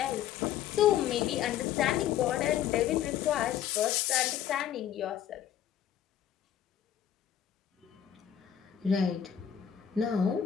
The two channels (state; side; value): quieter; right; 10.0 dB